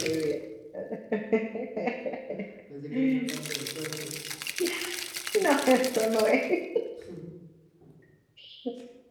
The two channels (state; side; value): identical; both; correlation 1.00